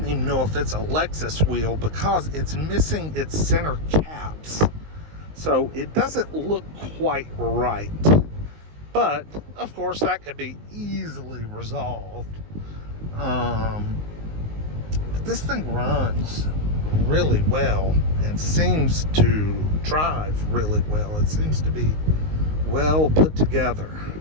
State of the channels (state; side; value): late; left; 19 ms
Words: even know if it's a Lexus wheel because it's missing its center caps. So it doesn't look quite right. But, of course, that could be easily resolved. But this thing runs really well and seems to drive really well. It seems to be well put together.